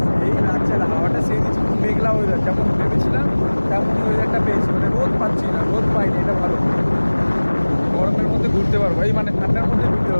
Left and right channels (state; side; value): inverted; both; correlation -1.00